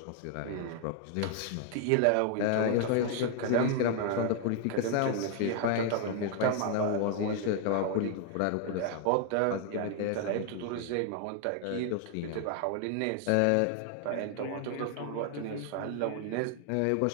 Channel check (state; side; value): different; both; correlation 0.00